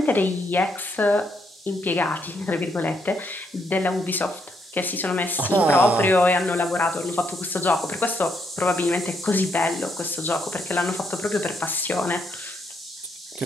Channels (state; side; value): normal; both; correlation 0.75